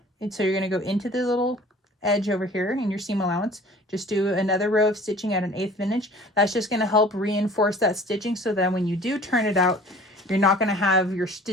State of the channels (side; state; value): both; normal; correlation 0.47